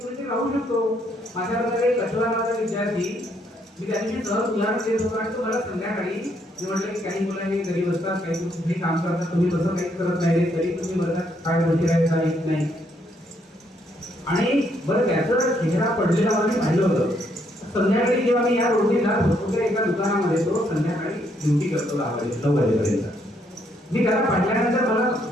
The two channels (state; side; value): normal; both; correlation 0.72